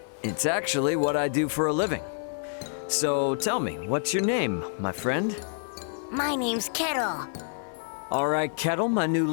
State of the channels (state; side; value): silent; right; 56 dB below the other